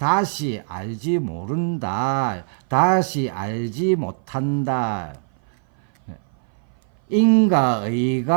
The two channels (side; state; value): left; silent; 58 dB below the other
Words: 알지 모른다. 다시 알지 못한다.